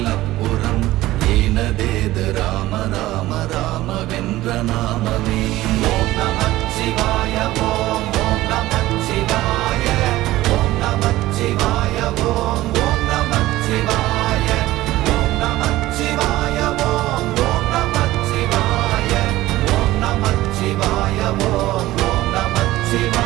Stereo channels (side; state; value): left; quieter; 16.7 dB